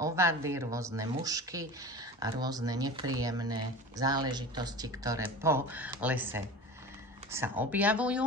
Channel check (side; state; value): both; normal; correlation 0.34